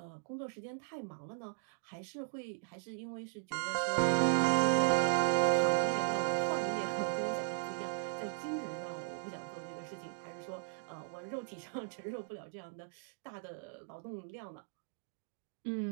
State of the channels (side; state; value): left; silent; digital silence